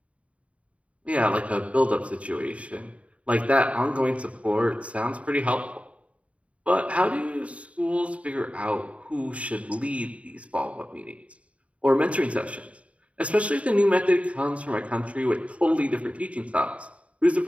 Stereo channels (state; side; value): late; left; 0.065 ms